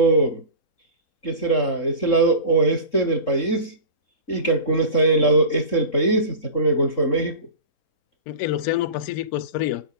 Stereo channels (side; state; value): right; late; 3.7 ms